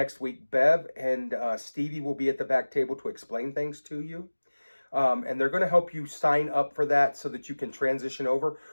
week. Bev and Stevie will be at the back table to explain things to you. And they're going to help you sign up for that so that you can transition over.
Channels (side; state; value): both; inverted; correlation -1.00